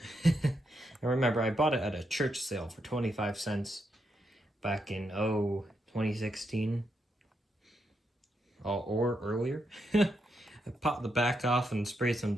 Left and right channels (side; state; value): both; normal; correlation 0.81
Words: I remember I bought it at a church sale for 25 cents back in, 2016. Or earlier. I popped the back off and sprayed some